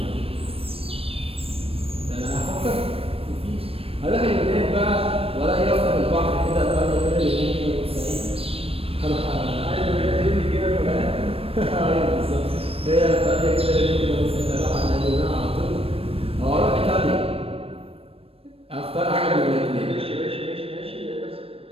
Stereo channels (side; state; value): left; late; 0.28 ms